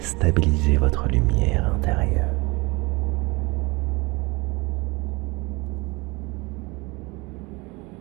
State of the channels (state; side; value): quieter; left; 25.4 dB